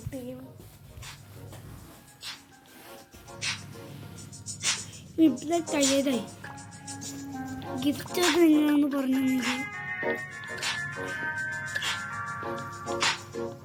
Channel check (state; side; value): identical; both; correlation 1.00